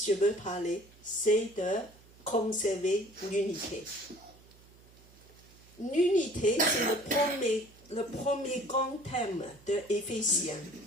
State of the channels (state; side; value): noise; right; hum, 25 dB below the sound